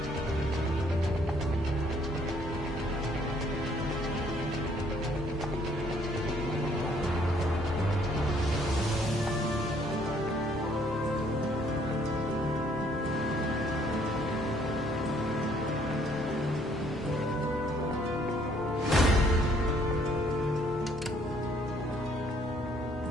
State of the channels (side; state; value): both; normal; correlation 0.64